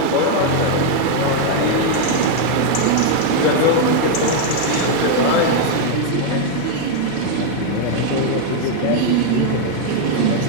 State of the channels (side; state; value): both; different; correlation 0.00